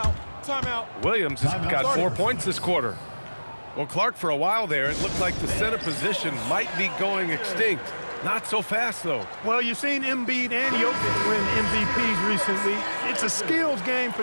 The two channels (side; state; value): both; inverted; correlation -1.00